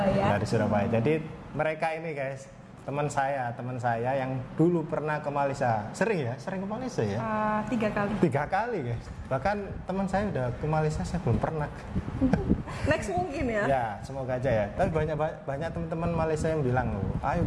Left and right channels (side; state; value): both; identical; correlation 1.00